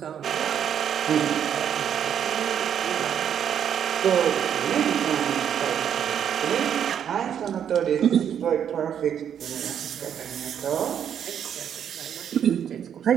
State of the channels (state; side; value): quieter; left; 8.9 dB